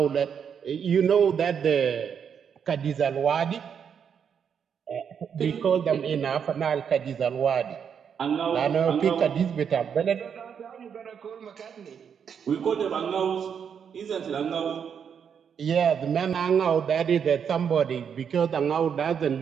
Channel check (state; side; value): quieter; left; 7.4 dB